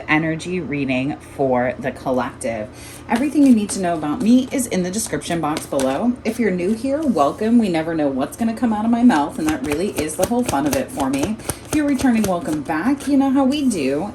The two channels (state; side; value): identical; both; correlation 1.00